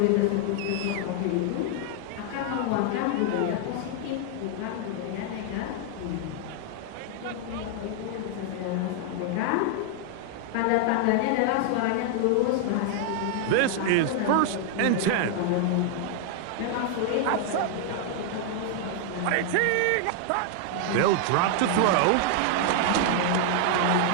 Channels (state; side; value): different; both; correlation 0.00